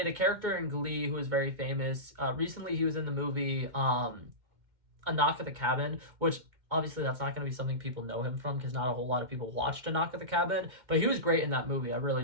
a character in Glee who was very famous. Recently he was in the movie A Knock at the Cabin, which obviously that's not going to be something people know him from because not a whole lot of people watched A Knock at the Cabin, but he was great in that movie. I really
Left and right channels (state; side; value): late; left; 2.1 ms